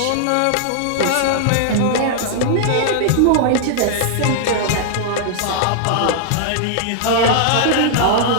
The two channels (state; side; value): different; both; correlation -0.01